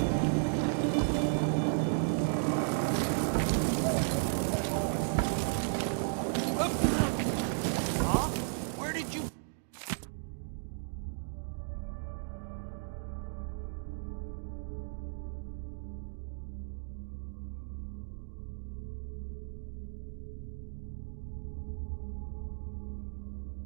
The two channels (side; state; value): left; silent; digital silence